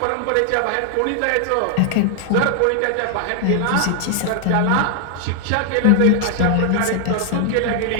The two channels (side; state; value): both; different; correlation 0.00